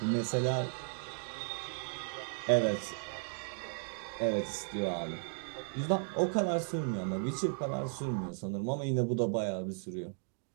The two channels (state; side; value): silent; left; digital silence